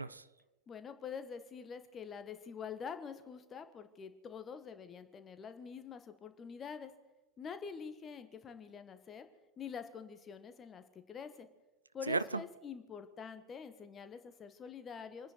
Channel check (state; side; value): normal; both; correlation -0.02